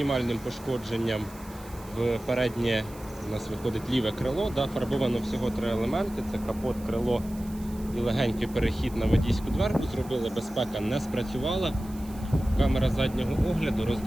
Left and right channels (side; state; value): right; noise; hiss, 21 dB below the sound